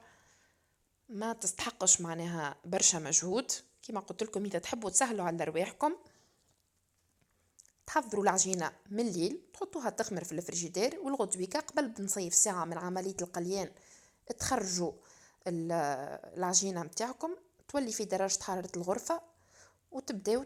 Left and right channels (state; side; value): identical; both; correlation 1.00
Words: ما تستحقش معناها برشا مجهود. كما قلت لكم إذا تحبوا تسهلوا على رواحكم تحضروا العجينة من الليل تحطوها تخمر في الفريجيدير، والغدويكا قبل بنصيف ساعة من عملية القليان تخرجوا العجينة متاعكم تولي في درجة حرارة الغرفة وتبداو